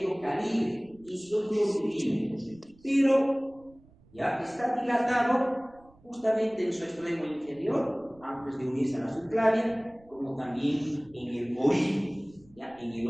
calibre, 18 milímetros, pero ya está dilatado justamente en su extremo inferior, antes de unirse a la subclavia, como también en el origen, ¿ya? En el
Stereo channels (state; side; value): noise; right; rumble, 27 dB below the sound